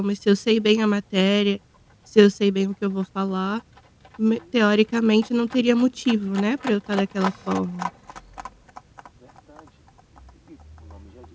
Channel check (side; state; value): both; identical; correlation 1.00